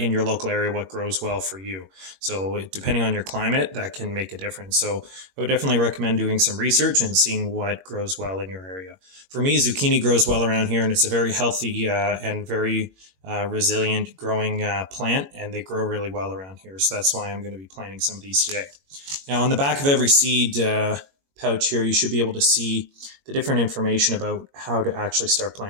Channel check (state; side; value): late; left; 21 ms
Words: your local area, what grows well for you. So depending on your climate, that can make a difference. So I would definitely recommend doing some research and seeing what grows well in your area. For me, zucchini grows well around here, and it's a very healthy and very resilient growing plant, and they grow really well around here. So that's why I'm going to be planting some of these today. Now, on the back of every seed pouch here, you should be able to see the different information about how to actually start